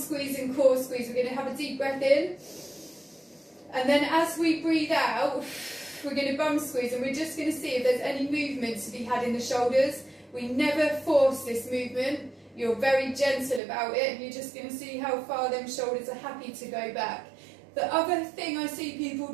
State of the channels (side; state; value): left; drops out; at 13.6 s